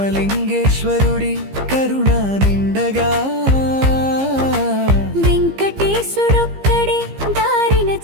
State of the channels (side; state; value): left; late; 15 ms